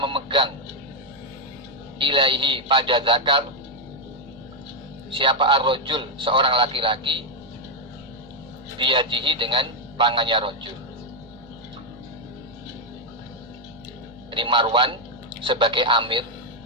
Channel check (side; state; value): both; normal; correlation 0.00